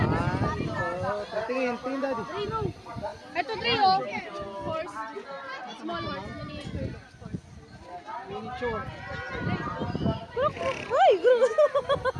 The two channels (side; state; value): both; identical; correlation 1.00